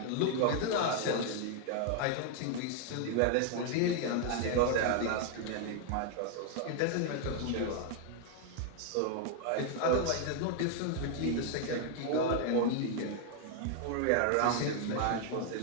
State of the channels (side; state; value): both; different; correlation 0.00